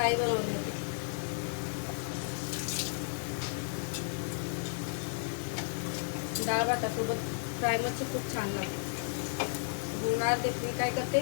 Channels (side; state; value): right; silent; digital silence